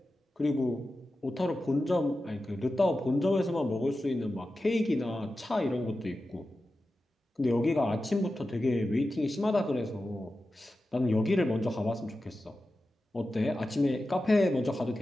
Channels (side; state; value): both; normal; correlation 0.93